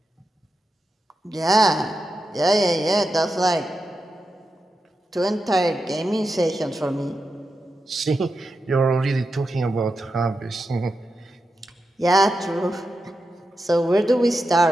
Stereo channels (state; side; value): normal; both; correlation 0.89